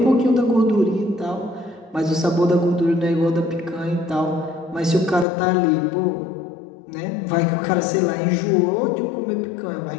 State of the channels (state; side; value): drops out; right; at 5.2 s